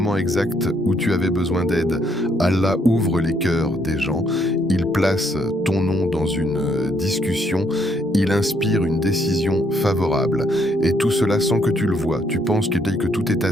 exact où tu avais besoin d'aide. Allah ouvre les cœurs des gens, il place ton nom dans une discussion, il inspire une décision favorable. Et tout cela sans que tu le vois, tu penses que tout est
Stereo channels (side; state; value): both; normal; correlation 0.71